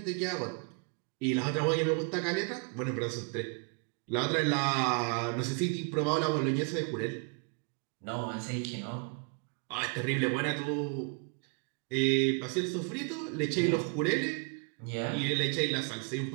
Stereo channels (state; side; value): quieter; left; 37.0 dB